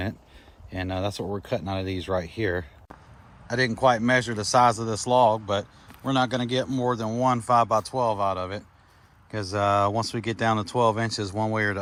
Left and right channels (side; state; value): both; identical; correlation 1.00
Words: and that's what we're cutting out of these right here. I didn't quite measure the size of this log, but we're not going to get more than one 5x12 out of it, because once we get down to 12 inches one way or the